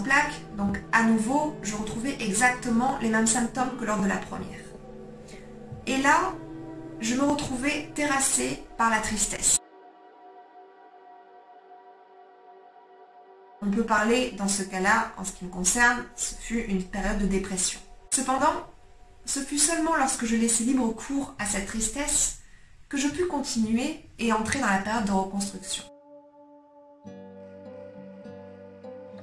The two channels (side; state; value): both; identical; correlation 1.00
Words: plaques, donc à nouveau, je retrouvais exactement les mêmes symptômes que lors de la première. Et là, je me retrouvais terrassée par la tristesse. On peut parler, dans ce cas-là, en ce qui me concerne, ce fut une période de dépression. Cependant, ce fut seulement lorsque je laissais libre cours à cette tristesse que je pus continuer et entrer dans la période de reconstruction.